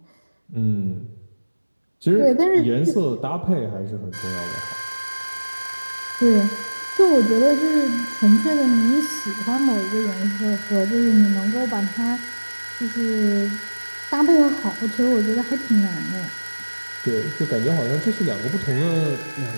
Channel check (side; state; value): both; inverted; correlation -1.00